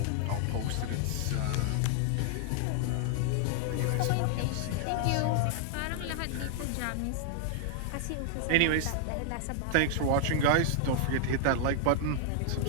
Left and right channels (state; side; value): different; both; correlation -0.01